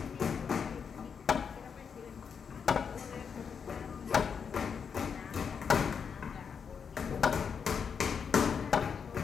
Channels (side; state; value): right; quieter; 6.5 dB